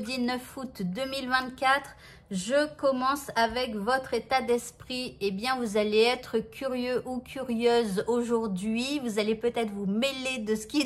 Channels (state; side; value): identical; both; correlation 1.00